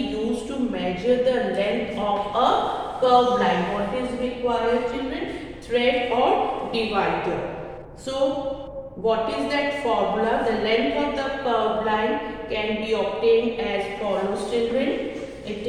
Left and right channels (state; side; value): identical; both; correlation 1.00